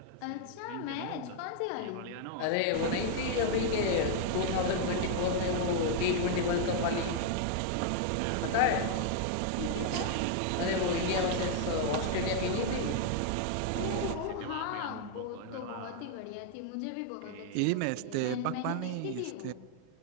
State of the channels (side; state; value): both; different; correlation -0.01